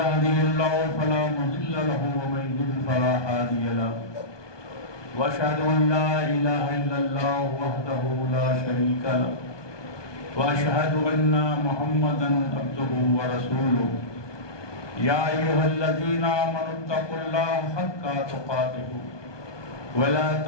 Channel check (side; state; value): right; late; 1.2 ms